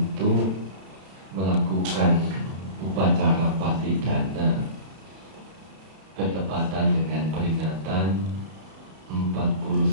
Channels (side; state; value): left; late; 32 ms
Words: melakukan upacara patidana bertepatan dengan peringatan